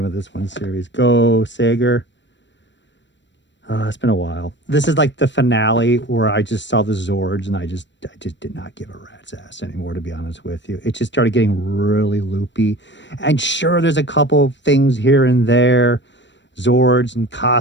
of this one series. Go Sager. It's been a while. This is like the finale where I just saw the Zords and I just did not give a rat's ass anymore, to be honest with you. It just started getting really loopy. And sure, there's a couple things here and there, Zords and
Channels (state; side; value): late; right; 0.53 ms